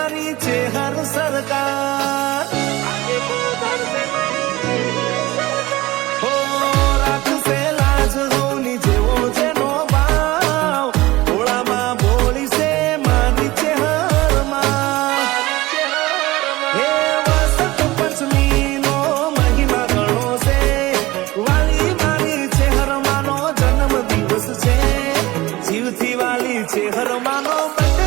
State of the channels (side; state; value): left; quieter; 19.1 dB